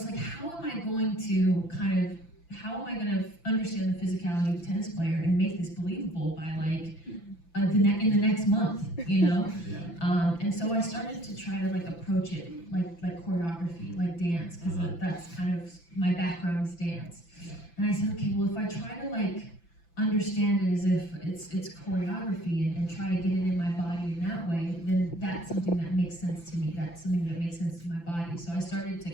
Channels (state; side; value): late; right; 5.9 ms